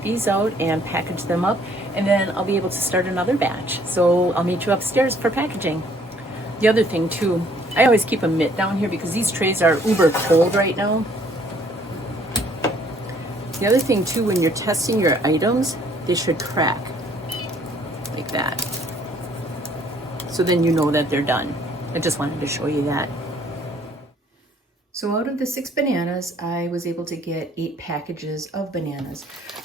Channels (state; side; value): normal; both; correlation 0.61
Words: these out and package them up, and then I'll be able to start another batch. So I'll meet you upstairs for packaging. The other thing too, I always keep a mitt down here because these trays are uber cold right now. The other thing too, when you're testing your items, they should crack like that. So then you know that they're done. I just wanted to show you that. So out of the 6 bananas, I was able to get 8 packages of bananas.